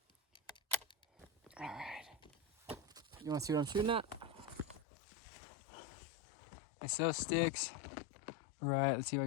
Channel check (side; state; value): right; drops out; at 4.8 s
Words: All right. You want to see what I'm shooting at? I saw sticks. All right, let's see if I